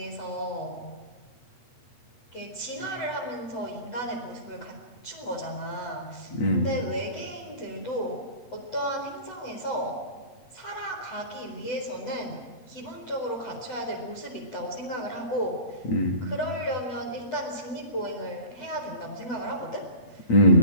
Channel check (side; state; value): right; late; 8.0 ms